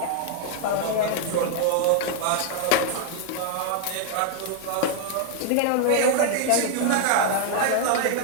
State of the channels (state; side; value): different; both; correlation 0.00